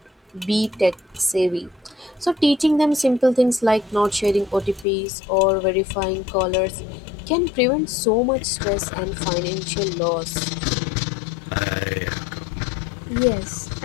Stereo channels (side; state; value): right; drops out; at 4.9 s